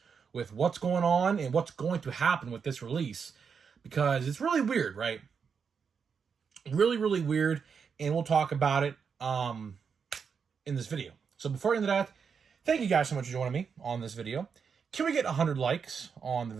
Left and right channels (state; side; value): quieter; left; 6.3 dB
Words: with what's going on and what's going to happen with this release, because it's really weird, right? Really weird, and we'll talk about it in this video. So before into that, thank you guys so much for joining me on this video. Can we get 100 likes on the